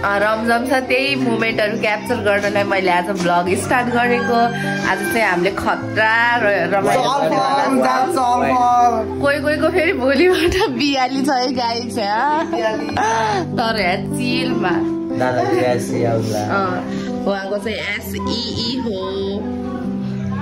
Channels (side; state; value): both; identical; correlation 1.00